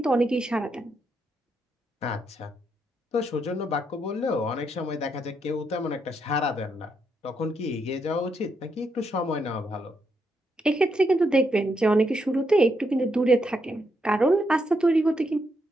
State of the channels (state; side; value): normal; both; correlation 0.79